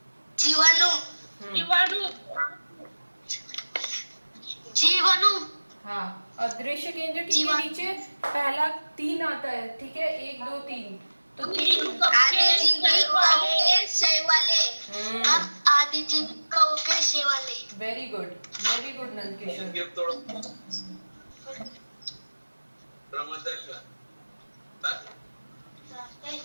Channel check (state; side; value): inverted; both; correlation -1.00